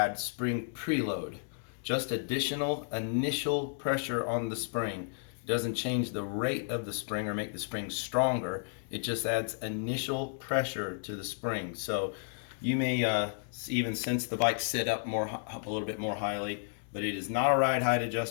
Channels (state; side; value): silent; right; digital silence